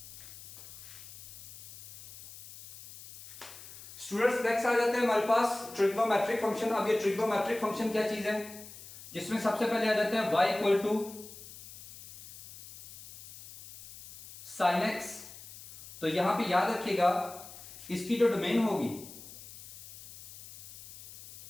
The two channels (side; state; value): left; noise; hiss, 16 dB below the sound